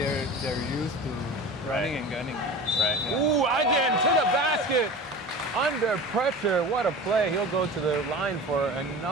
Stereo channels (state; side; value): normal; both; correlation 0.34